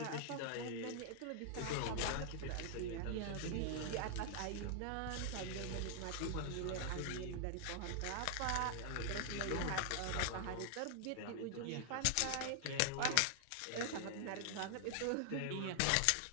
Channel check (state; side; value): different; both; correlation 0.00